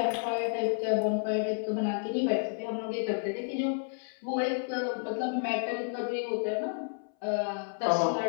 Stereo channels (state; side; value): silent; right; 57 dB below the other